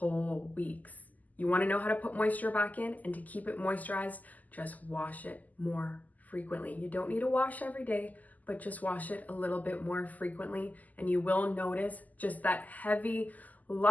weeks. You want to know how to put moisture back in, and to keep it moisturized, just wash it more frequently. You don't need to wash every day, but just wash it a little bit more frequently, and you will notice just that heavy,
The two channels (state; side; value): late; right; 0.080 ms